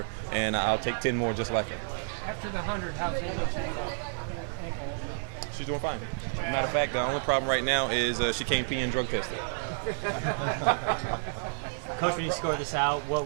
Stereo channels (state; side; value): silent; left; 58 dB below the other